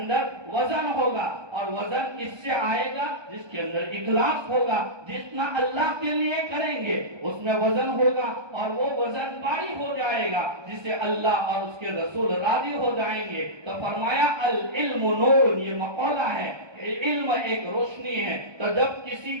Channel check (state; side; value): late; left; 1.2 ms